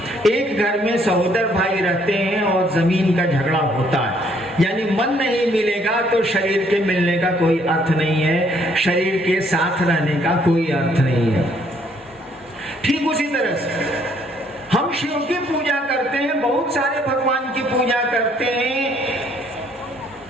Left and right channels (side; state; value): both; normal; correlation 0.66